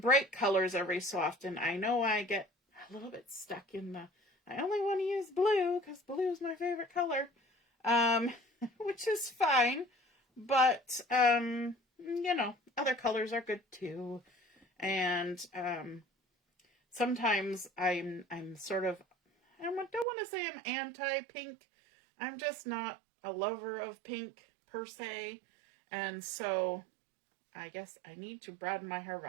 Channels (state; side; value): drops out; left; at 20.1 s